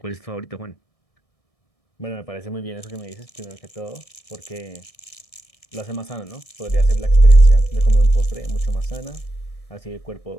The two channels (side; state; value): right; late; 1.6 ms